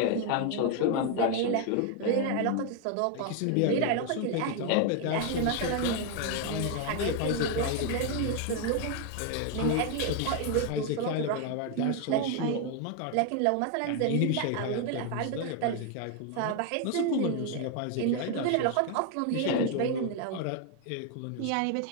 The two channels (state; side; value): different; both; correlation 0.01